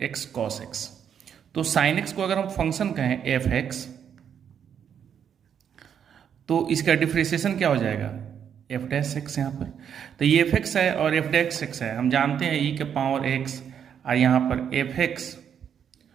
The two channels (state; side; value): quieter; left; 8.3 dB